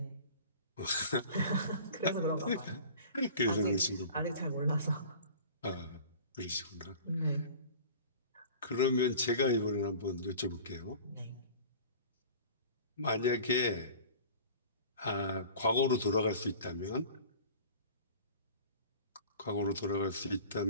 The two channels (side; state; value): both; inverted; correlation -0.42